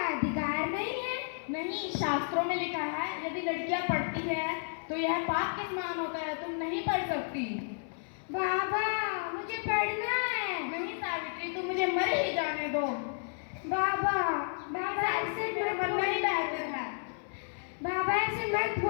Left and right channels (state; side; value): silent; right; 56 dB below the other